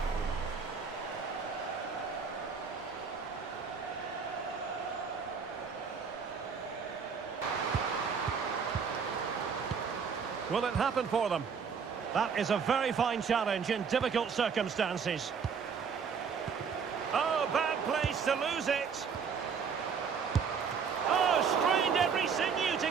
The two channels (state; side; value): quieter; left; 6.2 dB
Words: Will it happen for them? That is a very fine challenge in difficult circumstances. Oh, bad place to lose it. Oh, strained every sinew to